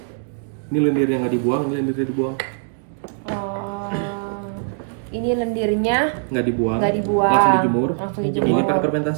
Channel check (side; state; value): left; silent; digital silence